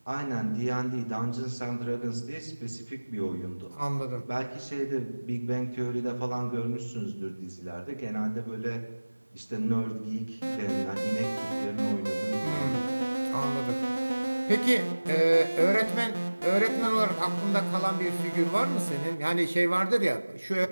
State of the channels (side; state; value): both; inverted; correlation -1.00